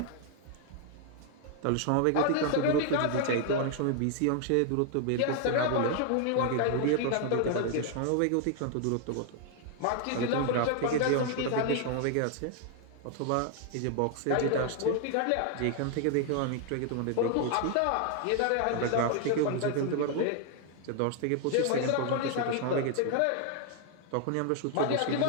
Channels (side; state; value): both; different; correlation 0.00